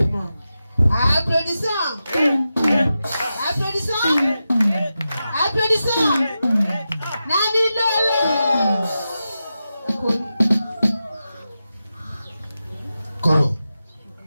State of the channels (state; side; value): inverted; both; correlation -0.91